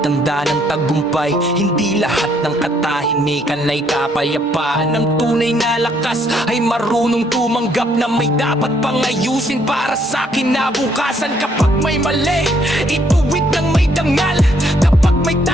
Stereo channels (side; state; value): both; normal; correlation 0.68